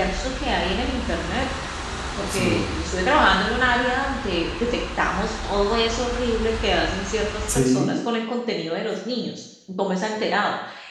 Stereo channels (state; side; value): identical; both; correlation 1.00